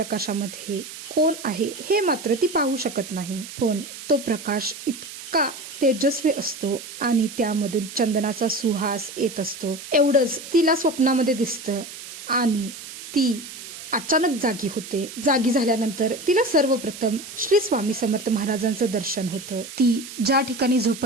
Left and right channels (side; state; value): right; noise; hiss, 12 dB below the sound